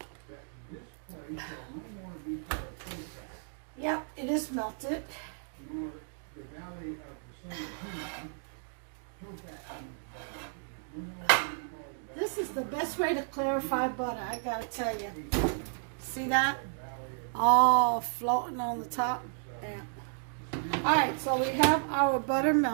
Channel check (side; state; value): left; silent; digital silence